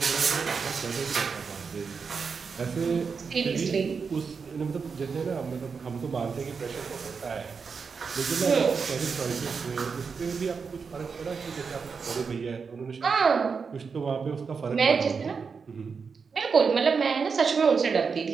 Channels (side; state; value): left; quieter; 5.5 dB